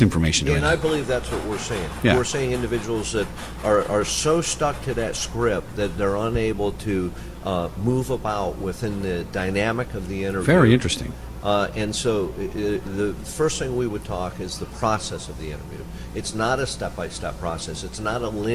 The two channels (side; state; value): both; identical; correlation 1.00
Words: And I believe that's what we're seeing. Yeah. We're seeing individuals that are so stuck to that script that they're unable to move about within the dynamic of the interview. Very interesting. And so the first thing we would talk is the process of the interview. It's not a step-by-step process. It's not a